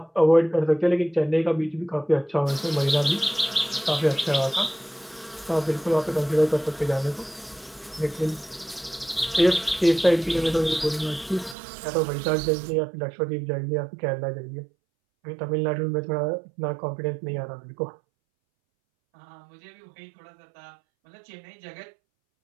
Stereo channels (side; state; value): left; drops out; at 11.6 s